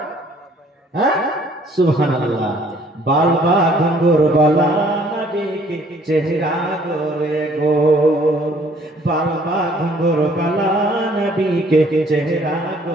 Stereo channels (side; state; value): both; normal; correlation 0.59